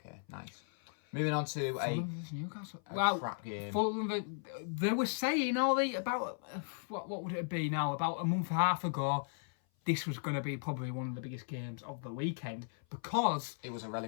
nice. Moving on to Newcastle. Crap game. Fulham, they were saying about what would it be now? About a month and a half ago, this was going to be probably one of the biggest games of the weekend because it was a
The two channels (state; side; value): silent; right; 54 dB below the other